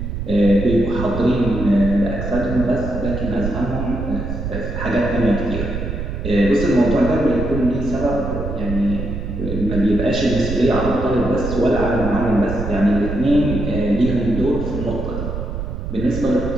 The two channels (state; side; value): noise; right; rumble, 5 dB below the sound